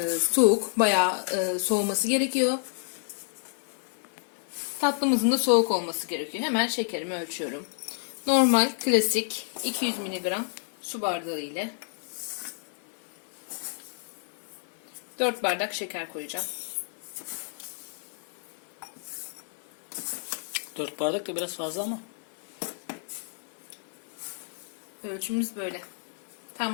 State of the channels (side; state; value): right; silent; digital silence